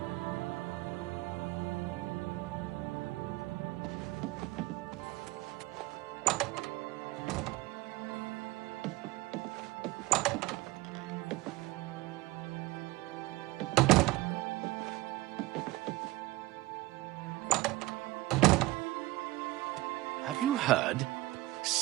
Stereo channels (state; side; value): quieter; left; 19.8 dB